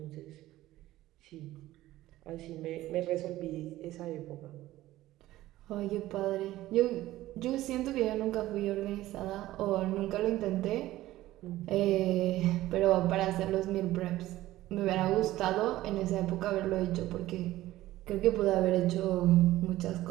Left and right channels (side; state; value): left; quieter; 15.7 dB